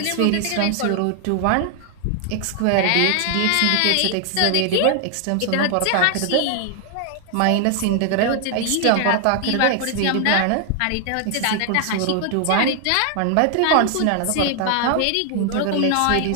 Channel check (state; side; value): different; both; correlation 0.00